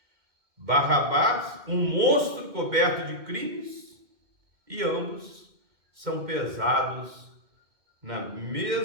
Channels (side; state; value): left; late; 2.1 ms